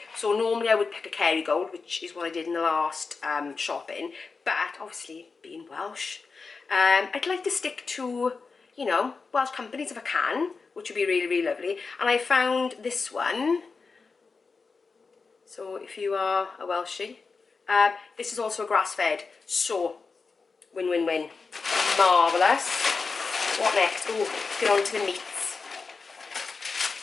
So normally I would pick a Kerrygold, which is what I did in the last shopping, but obviously being Welsh, I'd like to stick to, you know, Welsh companies if I can, which would be really lovely. And I found this one, so if you are a Welshie, this is also a grass-fed, so win-win-win, marvellous. What next? Oh, let's get on to the meats.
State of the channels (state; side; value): quieter; right; 4.6 dB